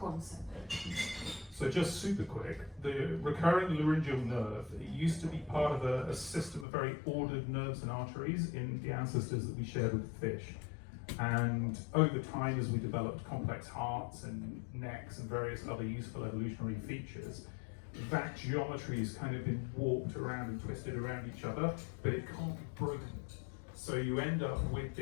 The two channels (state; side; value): drops out; right; at 6.7 s